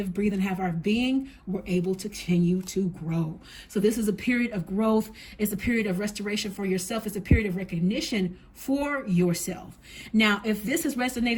breathe, and have our being, we're able to continue to grow. So this is a period of growth. It's a period of restoration for yourself. It's a period of recognition for yourself. Now, if this has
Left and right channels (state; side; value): identical; both; correlation 1.00